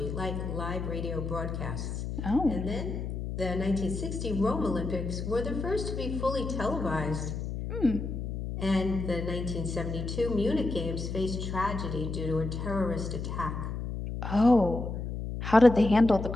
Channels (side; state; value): left; noise; hum, 5 dB below the sound